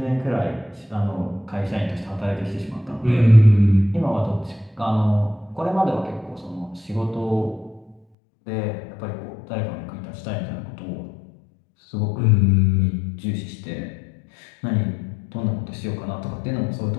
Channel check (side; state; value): right; drops out; at 8.0 s